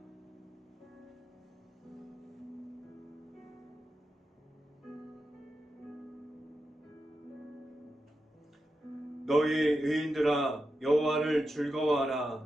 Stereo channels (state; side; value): normal; both; correlation 0.89